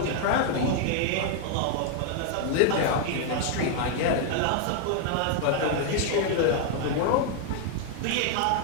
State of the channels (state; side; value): different; both; correlation 0.00